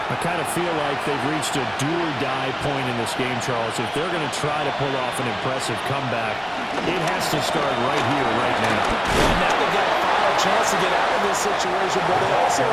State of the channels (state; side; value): identical; both; correlation 1.00